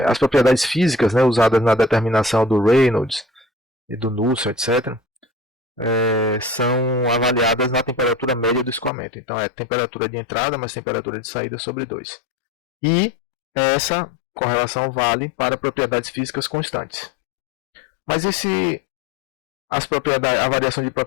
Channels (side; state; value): right; drops out; at 8.9 s